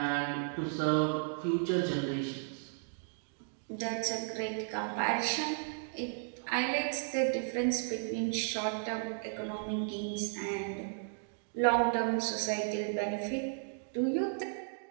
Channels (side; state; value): left; silent; digital silence